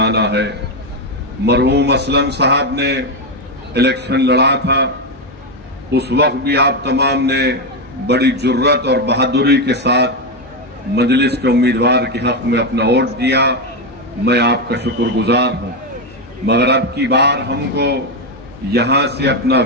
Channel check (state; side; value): normal; both; correlation 0.08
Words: है। मरहूम असलम साहब ने इलेक्शन लड़ा था, उस वक्त भी आप तमाम ने बड़ी जुर्रत और बहादुरी के साथ मजलिस के उम्मीदवार के हक में अपना वोट दिया। मैं आपका शुक्रगुजार हूं। मगर अब की बार हमको यहां से अपना